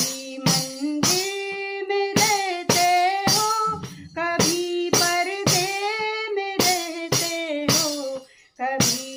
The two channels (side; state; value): both; identical; correlation 1.00